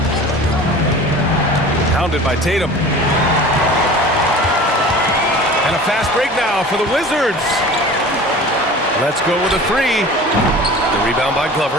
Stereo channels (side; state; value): both; normal; correlation 0.40